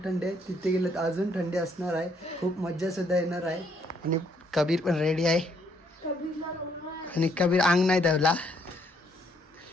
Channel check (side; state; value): both; normal; correlation 0.69